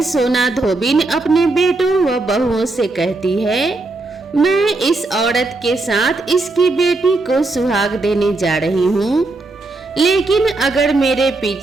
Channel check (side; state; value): left; quieter; 3.2 dB